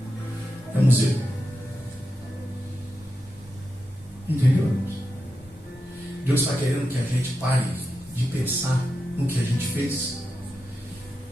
é museu. Entendeu, irmãos? Deus está querendo que a gente pare de pensar no que a gente fez.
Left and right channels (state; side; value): normal; both; correlation 0.88